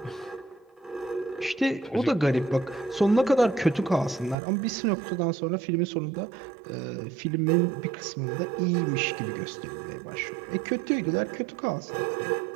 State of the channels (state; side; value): drops out; left; at 4.4 s